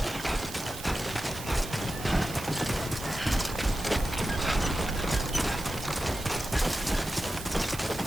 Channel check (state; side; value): noise; right; hiss, 12 dB below the sound